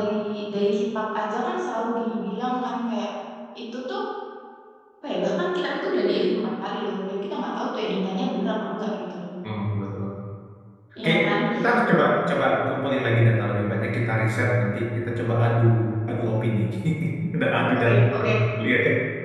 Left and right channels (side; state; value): both; identical; correlation 1.00